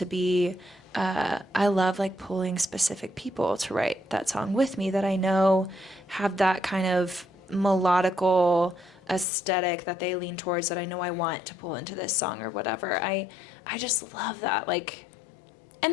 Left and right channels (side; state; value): right; drops out; at 9.2 s